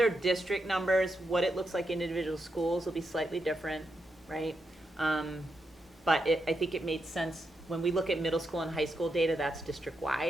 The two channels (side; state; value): both; normal; correlation 0.84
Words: district numbers. What it looks like in individual schools will be slightly different, right? But I think it made sense. When we look at middle school and high school data, that's